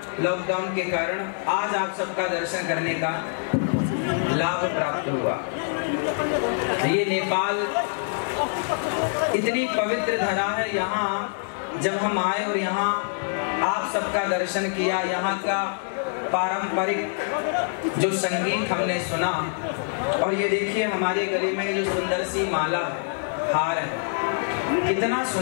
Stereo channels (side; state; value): right; silent; digital silence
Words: लॉकडाउन के कारण। आज आप सबका दर्शन करने का लाभ प्राप्त हुआ। ये नेपाल इतनी पवित्र धरा है। यहाँ जब हम आए और यहाँ आप सबका दर्शन किया, यहाँ का पारंपरिक जो संगीत हमने सुना, और ये देखिए हमारे गले में जो सुंदर सी माला है, हार है, कितना